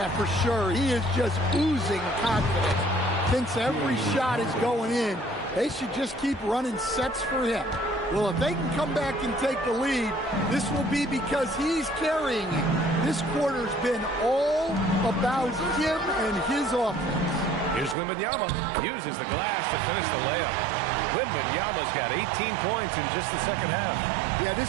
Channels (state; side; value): drops out; left; at 17.9 s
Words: for sure. He is just oozing confidence. Thinks every shot is going in. They should just keep running sets for him. Well, if they can come back and take the lead, this will be because he's carrying it. This quarter's been all about him and his offense. Here's Wembanyama. Uses the glass to finish the layup. Wembanyama's got 18 points in just the second half. Yeah, this